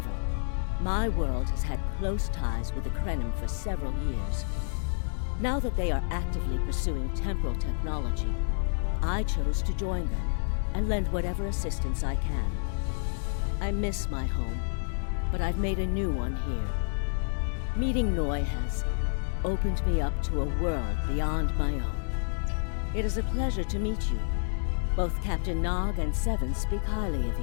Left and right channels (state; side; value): silent; right; digital silence